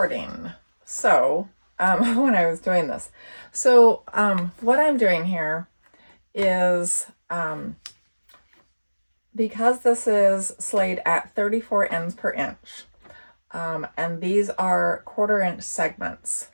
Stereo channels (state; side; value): inverted; both; correlation -1.00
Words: so when I was doing this. So what I'm doing here is, because this is slayed at 34 ends per inch, and these are 1/4 inch segments